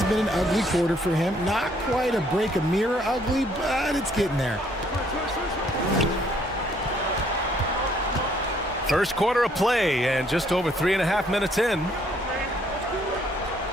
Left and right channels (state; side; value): normal; both; correlation 0.65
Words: been an ugly quarter for him. Not quite a break a mirror ugly, but it's getting there. First quarter of play and just over 3.5 minutes in.